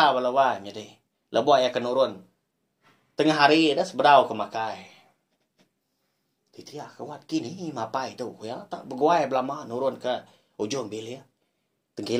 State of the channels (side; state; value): both; identical; correlation 1.00